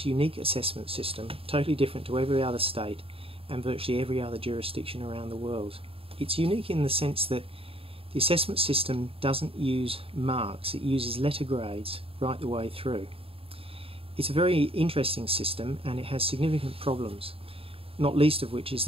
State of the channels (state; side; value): late; left; 0.27 ms